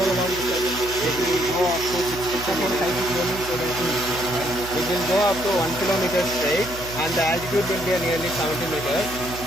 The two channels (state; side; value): noise; right; hum, 13 dB below the sound